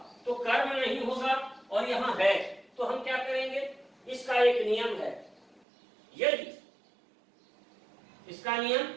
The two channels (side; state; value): left; drops out; at 5.6 s